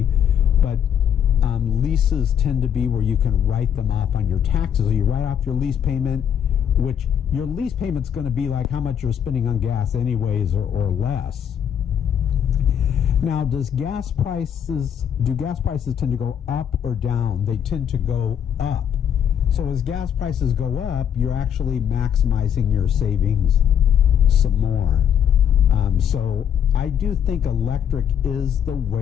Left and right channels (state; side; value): quieter; right; 8.8 dB